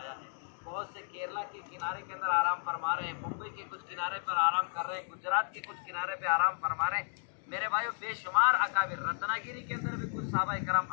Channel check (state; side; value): silent; right; digital silence